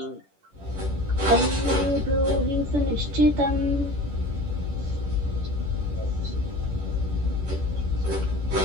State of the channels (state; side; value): late; left; 10 ms